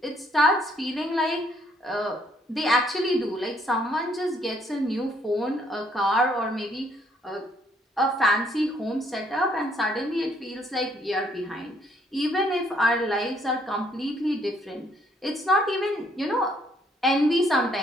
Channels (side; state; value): both; normal; correlation 0.67